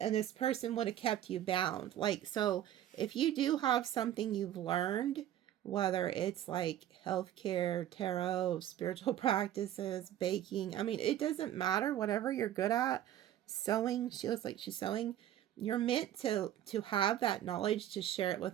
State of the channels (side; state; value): left; quieter; 11.8 dB